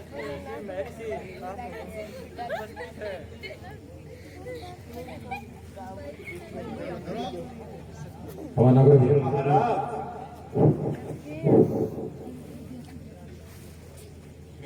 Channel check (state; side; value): identical; both; correlation 1.00